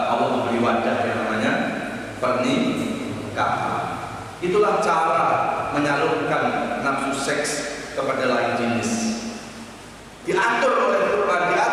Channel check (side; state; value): both; identical; correlation 1.00